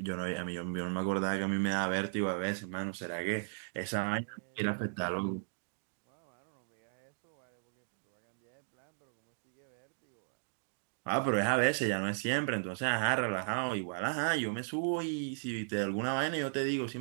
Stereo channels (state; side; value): silent; left; digital silence